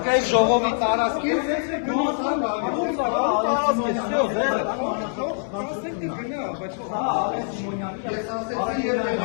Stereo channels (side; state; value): right; silent; 63 dB below the other